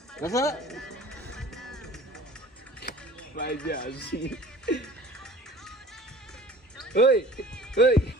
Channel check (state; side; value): normal; both; correlation 0.45